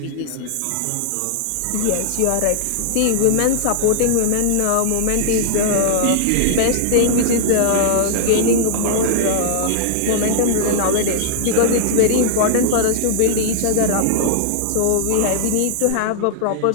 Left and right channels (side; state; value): both; different; correlation -0.01